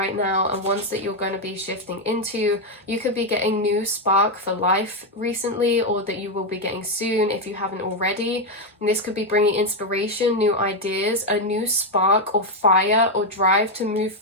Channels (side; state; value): both; normal; correlation 0.05